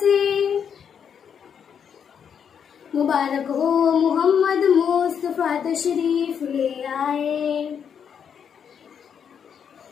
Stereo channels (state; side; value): quieter; right; 7.6 dB